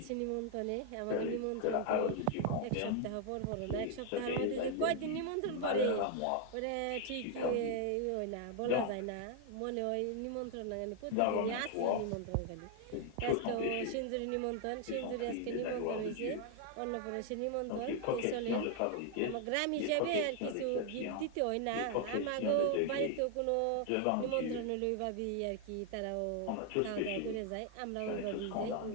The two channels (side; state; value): both; different; correlation 0.00